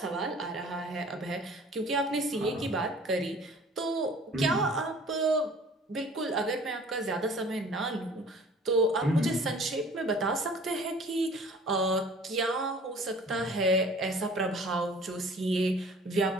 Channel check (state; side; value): normal; both; correlation 0.49